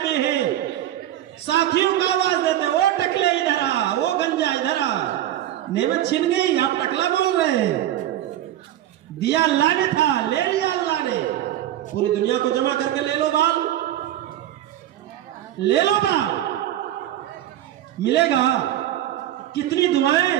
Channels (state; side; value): quieter; left; 12.7 dB